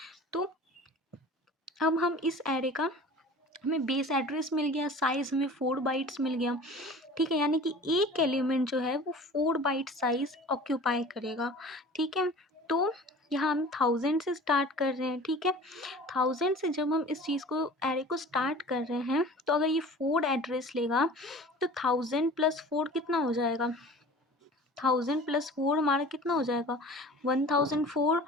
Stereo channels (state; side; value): normal; both; correlation 0.42